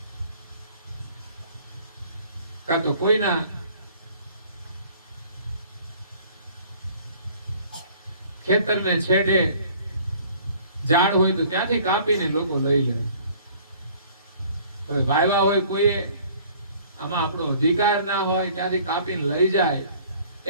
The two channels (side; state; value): both; inverted; correlation -0.54